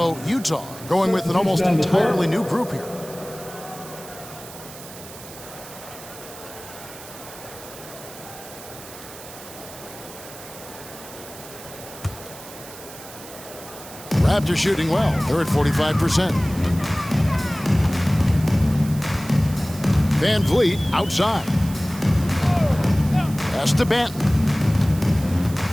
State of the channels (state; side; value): noise; right; hiss, 16 dB below the sound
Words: Utah going with an almost entirely new group here. Raptors shooting well. They're at 45%. Van Vliet outside. Pass to Banton.